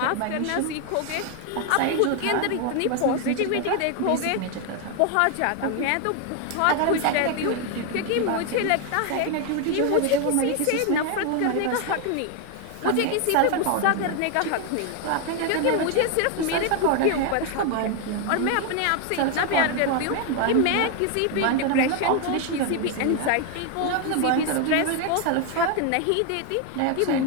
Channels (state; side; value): different; both; correlation 0.01